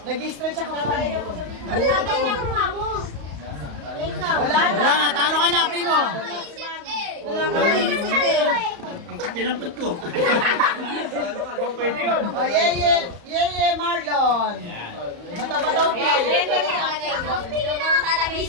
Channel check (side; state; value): left; late; 35 ms